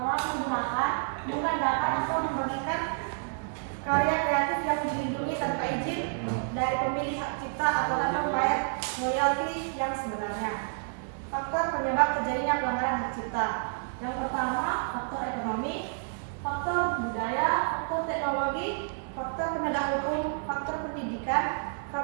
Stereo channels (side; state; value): left; silent; digital silence